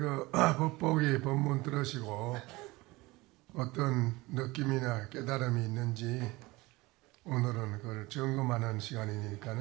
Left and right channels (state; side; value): quieter; left; 21.6 dB